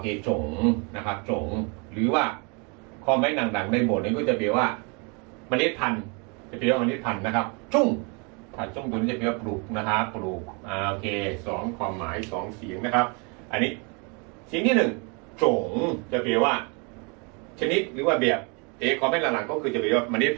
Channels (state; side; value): quieter; left; 33.0 dB